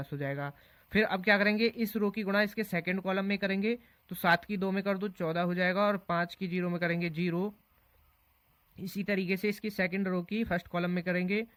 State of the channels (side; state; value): both; identical; correlation 1.00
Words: हो जाएगा। फिर अब क्या करेंगे, इस रो की गुणा इसके सेकंड कॉलम में करेंगे। तो 7 की 2 में कर दो 14 हो जाएगा और 5 की 0 में करेंगे 0। इसी तरीके से इसकी सेकंड रो की फर्स्ट कॉलम में करेंगे